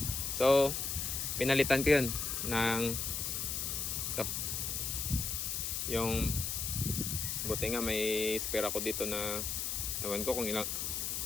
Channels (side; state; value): left; noise; hiss, 1 dB below the sound